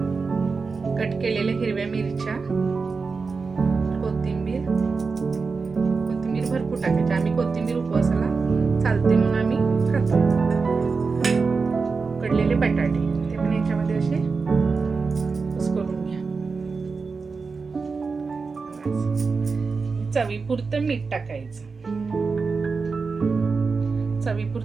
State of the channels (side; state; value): left; quieter; 4.6 dB